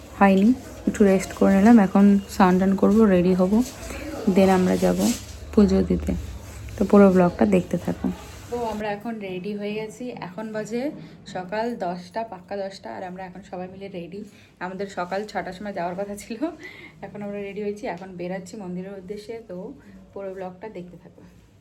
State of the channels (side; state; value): both; identical; correlation 1.00